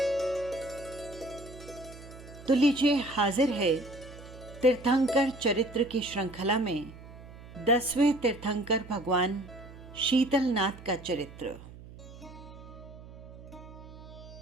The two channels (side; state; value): right; noise; hum, 17 dB below the sound